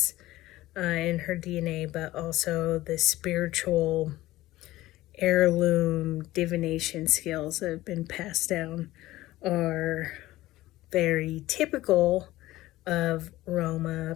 in her DNA, but also the spiritual heirloom divination skills that have been passed down are very typical of Roma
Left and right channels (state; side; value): quieter; right; 16.8 dB